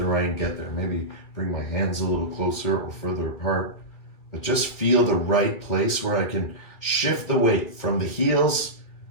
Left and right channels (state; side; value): late; right; 2.3 ms